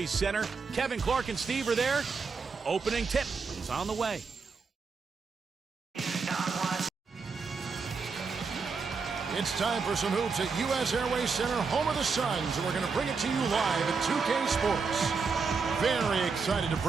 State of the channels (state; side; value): quieter; left; 5.0 dB